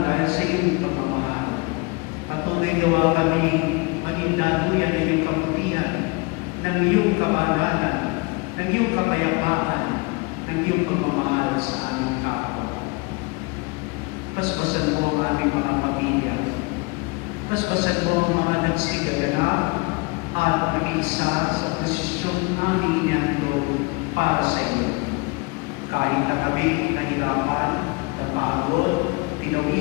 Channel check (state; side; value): quieter; right; 27.5 dB